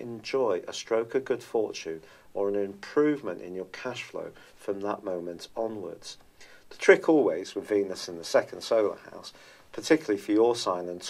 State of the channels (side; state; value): both; identical; correlation 1.00